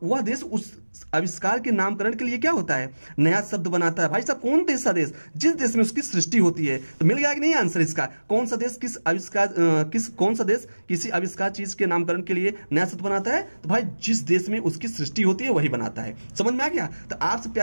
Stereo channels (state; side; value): inverted; both; correlation -1.00